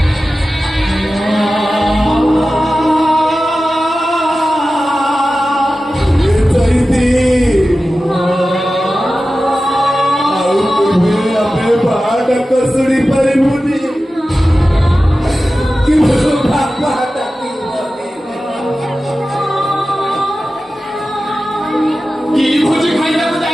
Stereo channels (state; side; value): normal; both; correlation 0.94